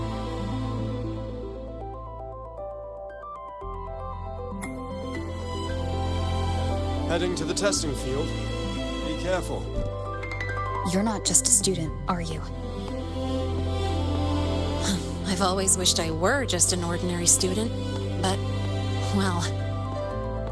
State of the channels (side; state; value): both; identical; correlation 1.00